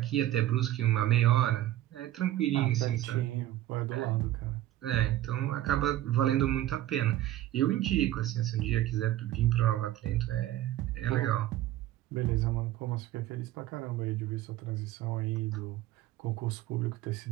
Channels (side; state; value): left; quieter; 14.1 dB